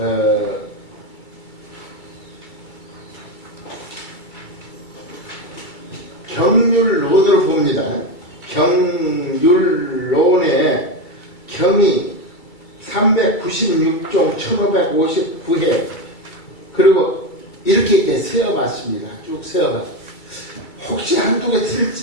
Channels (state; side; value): late; right; 2.3 ms